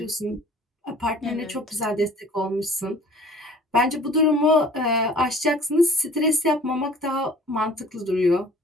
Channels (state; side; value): normal; both; correlation 0.49